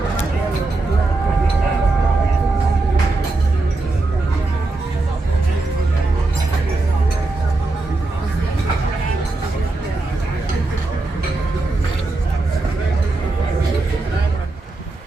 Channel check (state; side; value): quieter; left; 3.2 dB